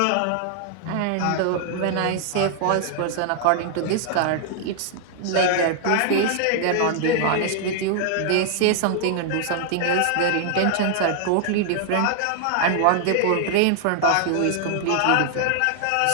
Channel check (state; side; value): different; both; correlation -0.01